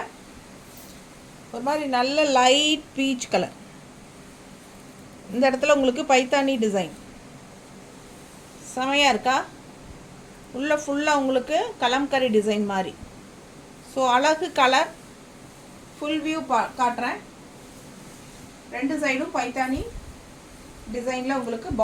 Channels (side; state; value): both; identical; correlation 1.00